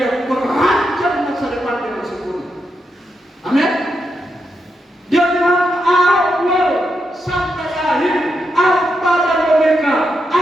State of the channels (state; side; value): normal; both; correlation 0.84